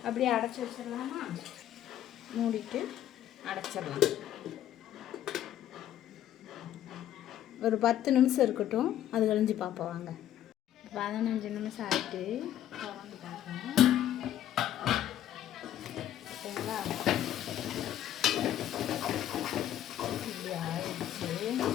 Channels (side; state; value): right; quieter; 11.7 dB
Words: அப்படியே அடைச்சி வச்சிடலாமா? மூடிட்டு அடைச்சிடலாம். ஒரு 10 நிமிஷம் இருக்கட்டும், அது கழிஞ்சு பார்ப்போம் வாங்க. 15 நிமிஷம் ஆகிட்டு திறந்து பார்ப்போம். ஓகேங்களா? இப்படி ஆயிடுச்சு.